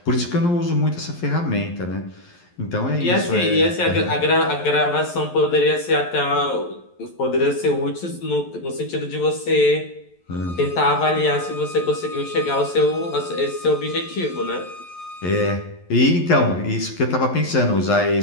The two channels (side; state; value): right; late; 11 ms